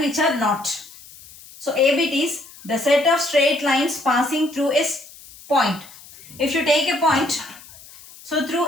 which are not. So A bit is the set of straight lines passing through a point. If you take a point, so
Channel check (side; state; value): left; noise; hiss, 20 dB below the sound